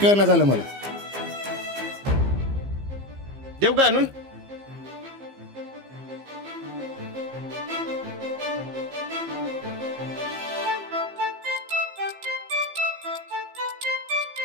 झालं मला. देऊ का आणून?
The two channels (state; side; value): late; left; 15 ms